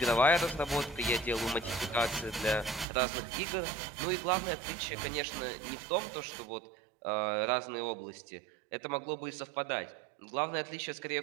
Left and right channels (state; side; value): drops out; left; at 2.9 s